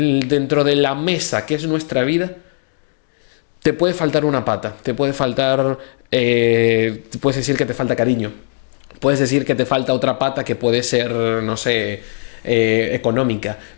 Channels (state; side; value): silent; right; digital silence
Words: de la mesa que es nuestra vida, te puede faltar una pata, te puede faltar, puedes decir que te falta cariño, puedes decir que te falta otra pata que puede ser, no sé, económica,